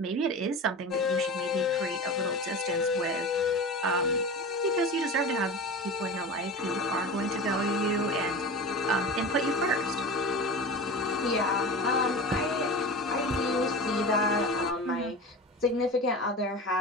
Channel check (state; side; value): normal; both; correlation 0.30